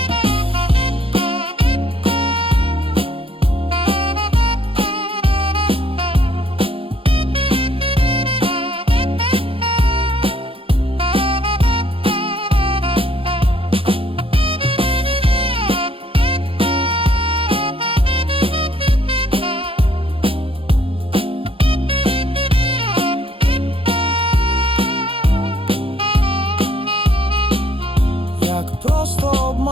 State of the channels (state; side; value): late; left; 0.27 ms